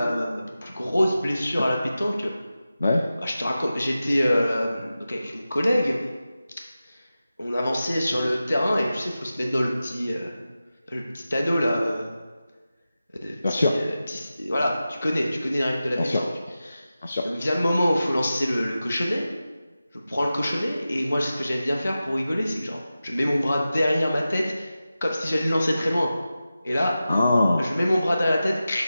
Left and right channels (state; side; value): inverted; both; correlation -0.94